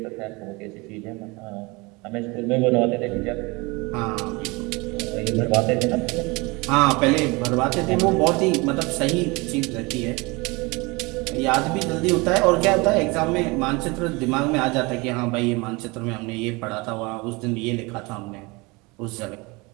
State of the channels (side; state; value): left; quieter; 25.5 dB